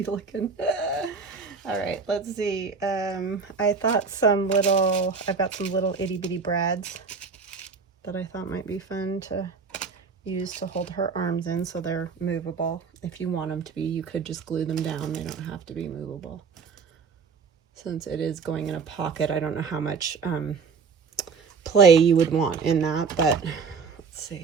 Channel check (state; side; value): quieter; left; 5.2 dB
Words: looking. All right, let's see. I thought I've got some little itty bitty brads that I thought might be fun to use to hold her arms in, so they're movable. If you want them to be, you could just glue them down. They don't have to be movable. Since it is going in a pocket, I don't know how much play you would want in that, but let's